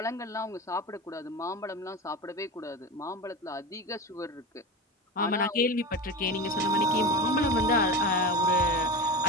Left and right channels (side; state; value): both; normal; correlation 0.25